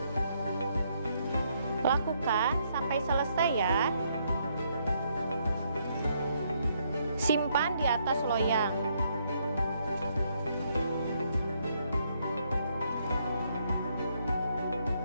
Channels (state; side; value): inverted; both; correlation -0.73